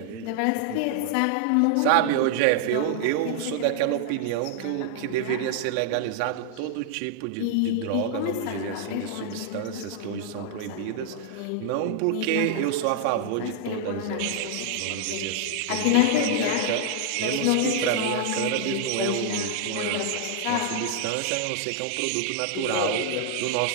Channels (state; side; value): different; both; correlation -0.01